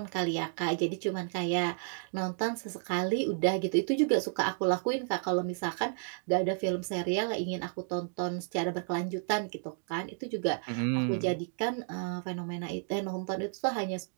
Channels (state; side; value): silent; left; 56 dB below the other